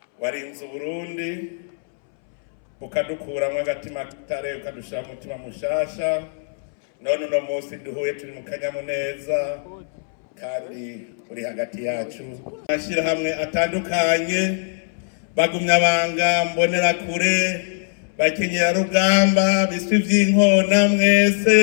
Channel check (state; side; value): silent; right; 64 dB below the other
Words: warinze Uburundi ukadukuramwo agatima k'itare ukadushira mu mutima mushasha, none uno munsi duhuye turi mu kanyamuneza kandi uri hagati yacu. Amashirahamwe atandukanye, bagumyabanga, mbonerakure, bakenyerarugamba, biswi vy'inkona,